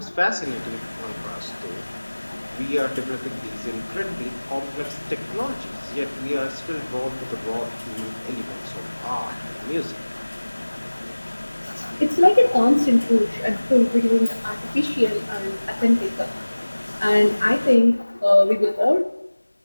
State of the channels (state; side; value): inverted; both; correlation -1.00